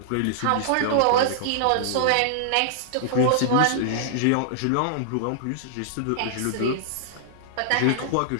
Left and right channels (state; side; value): different; both; correlation -0.01